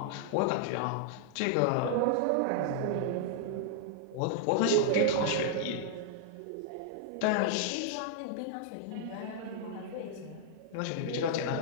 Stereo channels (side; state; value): both; different; correlation -0.01